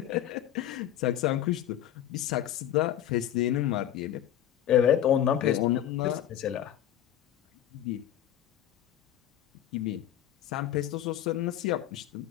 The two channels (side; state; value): right; quieter; 11.3 dB